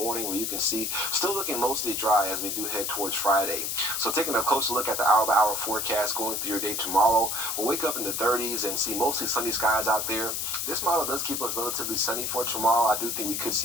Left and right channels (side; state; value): left; noise; hiss, 1 dB below the sound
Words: where you can see still looking mostly dry as we do head towards Friday. So taking a closer look at the hour-by-hour forecast going through your day tomorrow, we'll wake up in the 30s and see mostly sunny skies out there. This model does keep us relatively sunny for tomorrow. I do think we could